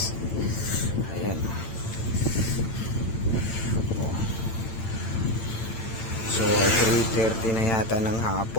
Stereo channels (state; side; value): late; right; 8.9 ms